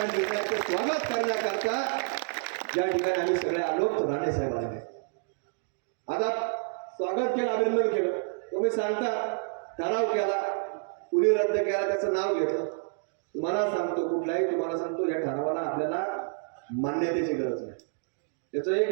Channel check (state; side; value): silent; left; digital silence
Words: निर्णयाचं स्वागत करण्याकरता या ठिकाणी आम्ही सगळे आलो. राणे साहेब आले, आता स्वागत केलं, अभिनंदन केलं. तुम्ही सांगता ठराव केला, कुणी रद्द केला त्याचं नाव घेतलं. तुम्हाला सांगतो कुठलाही तुम्हाला सांगतो या ठरावाला आपल्याला मान्यतेची गरज नाही. त्याचं